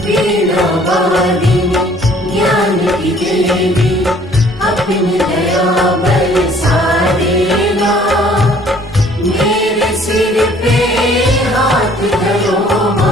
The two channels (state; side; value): normal; both; correlation 0.56